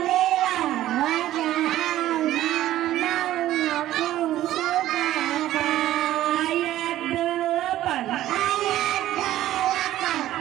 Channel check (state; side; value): quieter; left; 13.8 dB